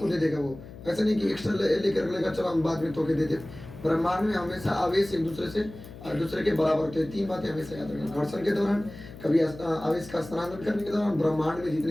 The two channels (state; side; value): noise; left; hum, 15 dB below the sound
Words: दे देगा। वो ऐसा नहीं कि एक्स्ट्रा लेकर लेगा चलो हम बाद में तोके देते। ब्रह्मांड में हमेशा आवेश एक दूसरे के बराबर होते हैं। 3 बातें हमेशा याद रखें, घर्षण के दौरान, कभी आवेश का स्थानांतरण करने के दौरान, ब्रह्मांड में